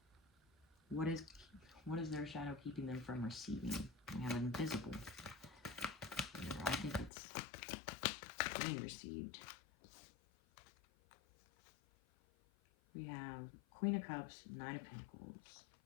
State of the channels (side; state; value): right; drops out; at 7.1 s